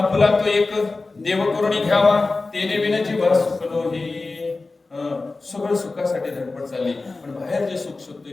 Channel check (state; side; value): quieter; right; 3.6 dB